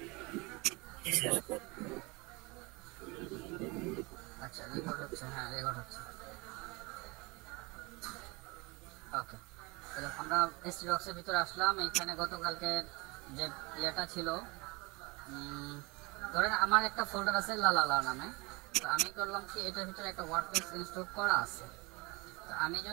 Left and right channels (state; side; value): quieter; left; 25.8 dB